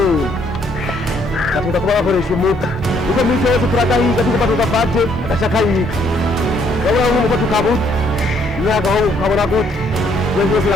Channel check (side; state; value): both; normal; correlation 0.68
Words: katuza kuba bakoresha umuti uko misi yose turagahiga tukuba tugafate agashakayiga urabona nk'uko tukabuze imyaka aho ukabona gute wese wese